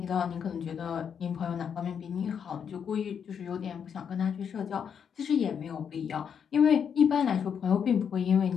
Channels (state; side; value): quieter; right; 7.5 dB